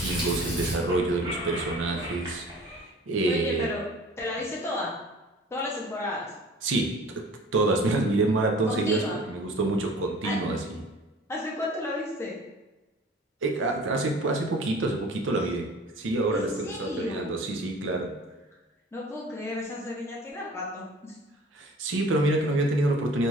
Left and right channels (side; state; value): both; normal; correlation 0.46